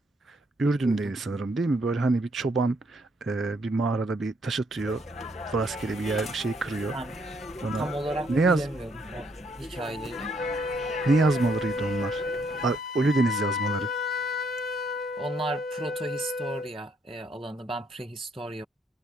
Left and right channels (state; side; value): normal; both; correlation 0.71